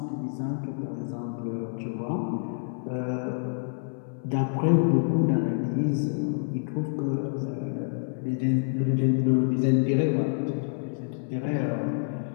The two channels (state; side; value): silent; right; 60 dB below the other